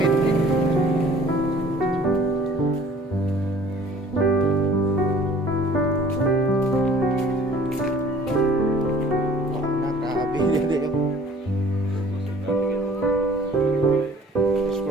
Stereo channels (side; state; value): both; normal; correlation 0.52